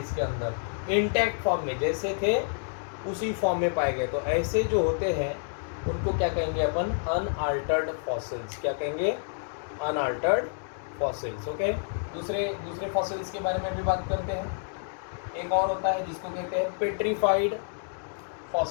अंदर। इंटैक्ट फॉर्म में जैसे थे उसी फॉर्म में पाए गए। तो ऐसे जो होते हैं उनको क्या कहेंगे अपन, अनअल्टर्ड फॉसिल्स। क्या कहेंगे, अनअल्टर्ड फॉसिल्स। ओके, दूसरे दूसरे फॉसिल्स के बारे में भी बात करते हैं। एक और होता है जिसको कहते हैं petrified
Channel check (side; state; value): right; silent; digital silence